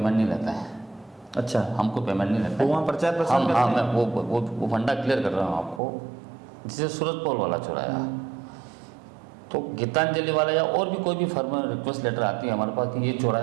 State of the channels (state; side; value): drops out; left; at 5.8 s